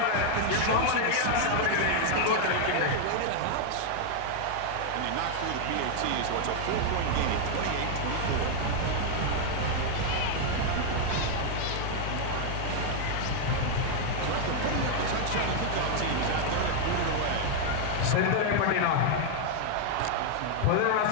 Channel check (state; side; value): different; both; correlation 0.00